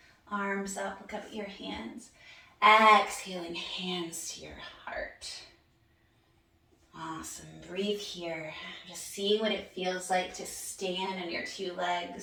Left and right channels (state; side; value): identical; both; correlation 1.00